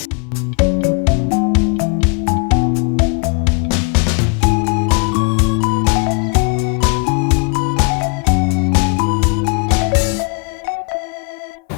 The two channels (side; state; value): right; quieter; 34.9 dB